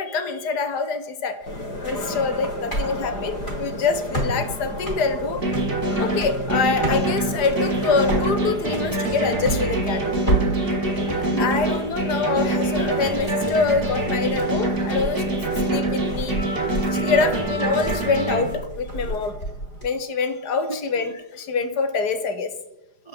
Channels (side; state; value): right; late; 4.9 ms